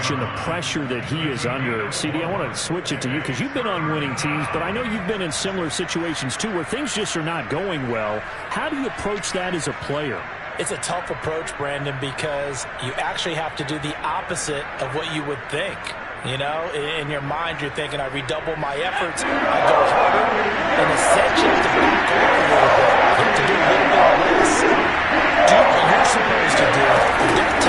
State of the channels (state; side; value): identical; both; correlation 1.00